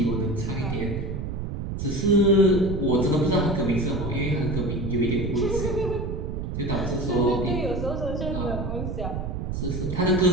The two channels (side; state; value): right; noise; rumble, 4 dB below the sound